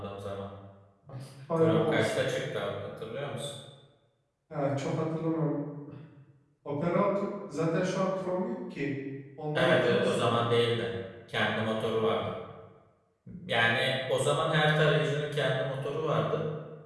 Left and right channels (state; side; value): identical; both; correlation 1.00